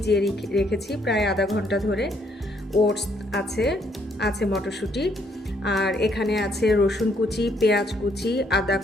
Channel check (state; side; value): normal; both; correlation 0.70